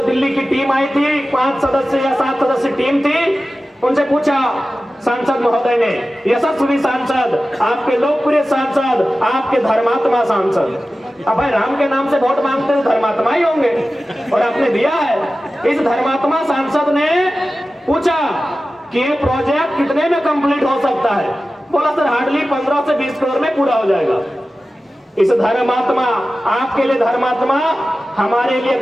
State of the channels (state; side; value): normal; both; correlation 0.95